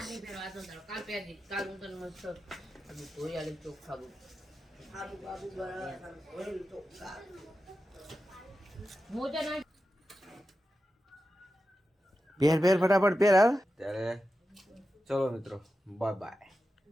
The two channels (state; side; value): normal; both; correlation 0.91